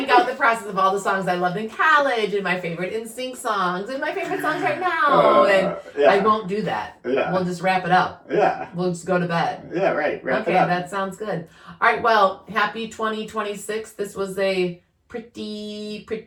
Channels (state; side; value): identical; both; correlation 1.00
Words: out the process of all the songs I loved in college and my favorite NSYNC songs and my favorite songs right now, I won't do that. Yeah. We'll just wrap it up. Yeah. We'll just go to bed. Yeah, right. Wrap it up. Okay, that sounds good. All right, well, happy 2026. This was a pretty